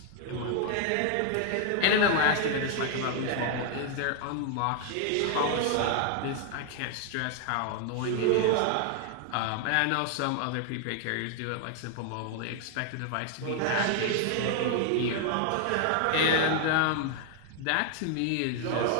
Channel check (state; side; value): different; both; correlation 0.00